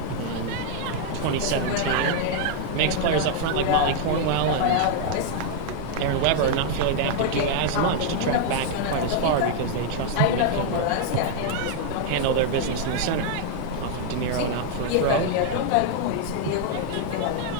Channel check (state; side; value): different; both; correlation 0.00